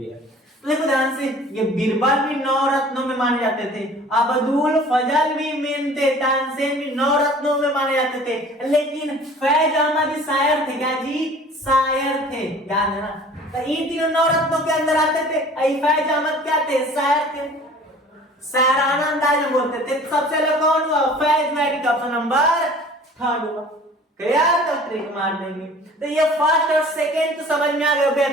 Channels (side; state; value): both; normal; correlation 0.47